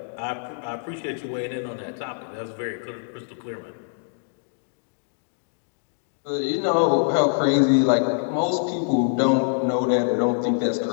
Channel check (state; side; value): silent; right; digital silence